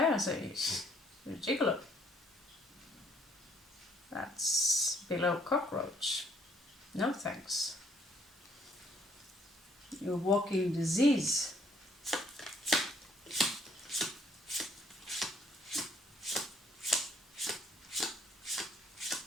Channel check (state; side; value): normal; both; correlation 0.64